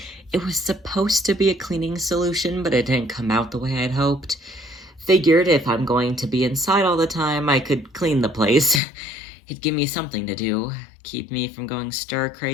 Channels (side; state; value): right; drops out; at 8.8 s